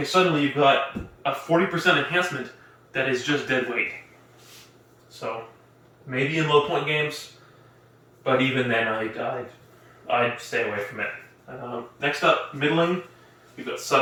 suddenly you've got a 40% enhancement that is just dead weight. So maybe in low point games, but even then I'd stay away from it. Next up, middling, we've got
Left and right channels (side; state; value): both; identical; correlation 1.00